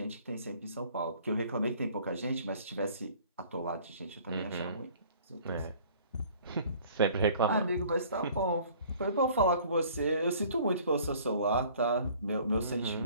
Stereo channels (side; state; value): both; inverted; correlation -0.53